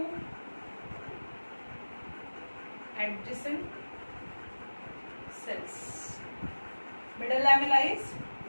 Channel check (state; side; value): inverted; both; correlation -1.00